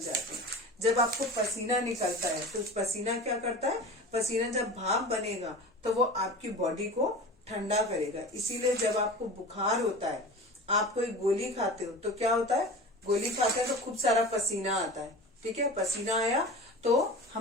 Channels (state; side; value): normal; both; correlation 0.34